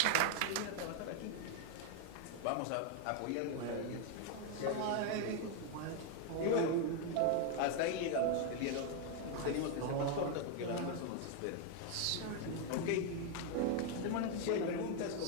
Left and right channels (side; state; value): both; different; correlation 0.01